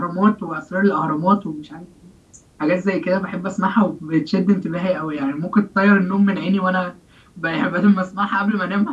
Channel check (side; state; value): both; identical; correlation 1.00